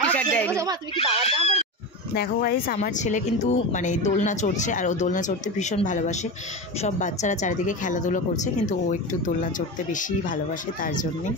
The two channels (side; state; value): both; normal; correlation 0.22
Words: টি শার্ট দেয়নি। দেখো গাইস, আমার ছেলে কিন্তু মানে দোলনা চড়ছে, আর ও দোলনা চড়তে ভীষণ ভালোবাসে। সব বাচ্চারা চারিদিকে খেলাধুলো করছে, কিন্তু ও একটু দোলনা চড়তে বেশি ভালোবাসে, তার জন্যেই।